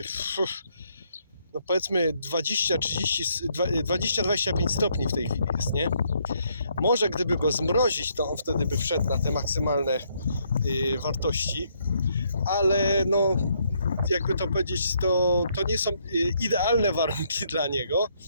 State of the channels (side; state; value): both; inverted; correlation -0.72